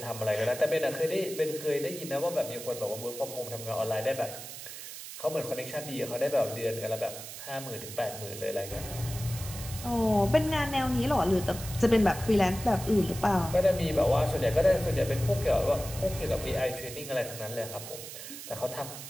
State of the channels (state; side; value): noise; right; hiss, 11 dB below the sound